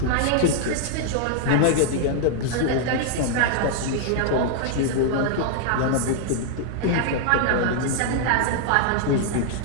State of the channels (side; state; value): both; different; correlation 0.00